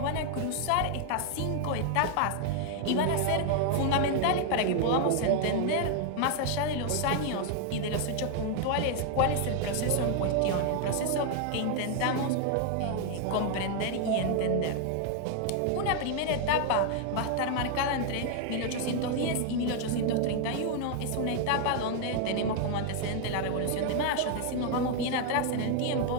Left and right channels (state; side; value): different; both; correlation 0.00